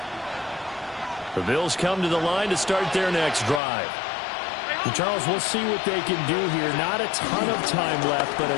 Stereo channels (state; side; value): drops out; right; at 3.6 s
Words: The Bills come to the line to start their next drive. And Charles, we'll see what they can do here. Not a ton of time left, but